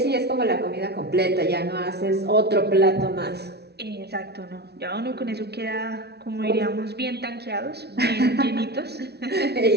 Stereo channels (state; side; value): late; left; 0.48 ms